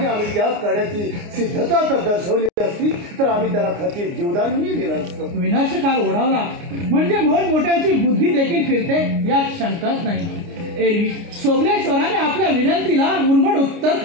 आम्ही त्या करण्याची सिद्धता जर दर्शवली असती तर आम्ही त्याला खचित जीवदानही दिलं असतं. विनाशकाल ओढावला म्हणजे मोठमोठ्यांची बुद्धी देखील फिरते यात शंकाच नाही. एरवी सोमलेश्वराने आपल्या विनंतीला उर्मट उत्तर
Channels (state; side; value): late; left; 29 ms